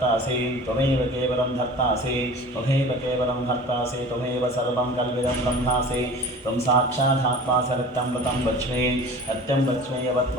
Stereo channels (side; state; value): both; normal; correlation 0.40